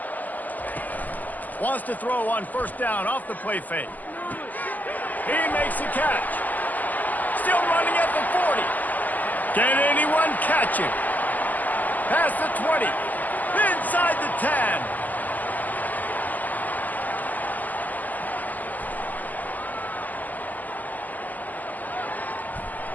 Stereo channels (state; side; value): late; right; 0.082 ms